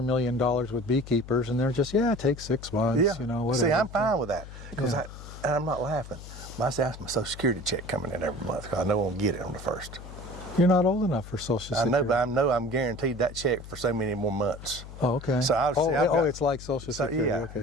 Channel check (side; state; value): left; noise; hum, 14 dB below the sound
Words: $1 million with Beekeepers, and they're just, it takes 6 months, you know, whatever. See, I'm fine with that because Yeah. and I'm not laughing. I say that's my Social Security check coming in every month because I know I'll get it on the 1st. You're not old enough for Social I Security. know, but I know I'm guaranteed that check for so many more months. Oh, okay. So I've got- it's like Social So Security. yeah,